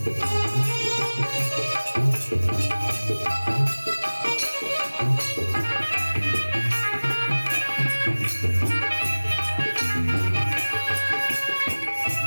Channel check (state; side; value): inverted; both; correlation -1.00